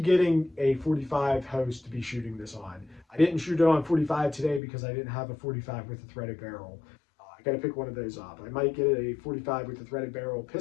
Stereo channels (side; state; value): right; drops out; at 4.6 s